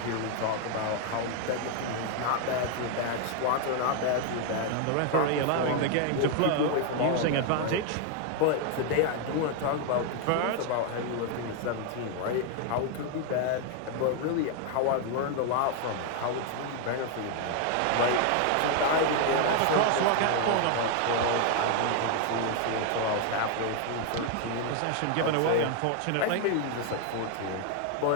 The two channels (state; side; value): different; both; correlation 0.01